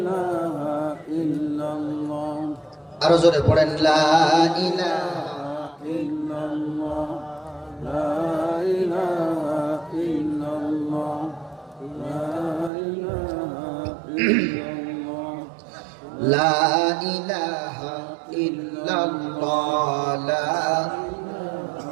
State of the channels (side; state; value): left; drops out; at 12.7 s